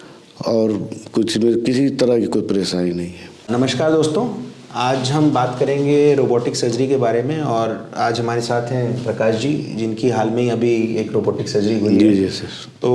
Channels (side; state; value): both; identical; correlation 1.00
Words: और किसी तरह की कोई परेशानी नहीं है। नमस्कार दोस्तों, आज हम बात करेंगे रोबोटिक सर्जरी के बारे में और आज हमारे साथ हैं प्रकाश जी, जिनकी हाल में ही अभी एक रोबोटिक सर्जरी हुई है। जी सर।